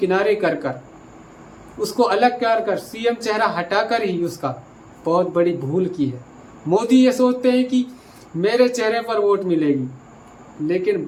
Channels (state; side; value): identical; both; correlation 1.00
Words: कर उसको अलग कर सीएम चेहरा हटाकर ही उसका बहुत बड़ी भूल की है। मोदी ये सोचते हैं कि मेरे चेहरे पर वोट मिलेगी, लेकिन